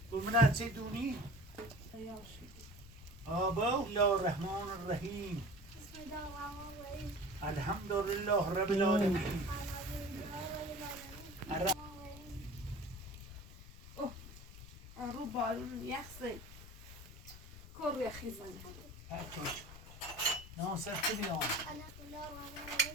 بگو چی دونی آبا الله الرحمن الرحیم الحمد لله رب العالمین رو بارون یخصی کر یخی زنه ناصر کنیم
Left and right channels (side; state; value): left; noise; rumble, 16 dB below the sound